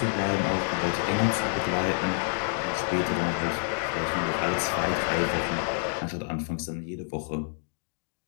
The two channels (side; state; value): right; silent; digital silence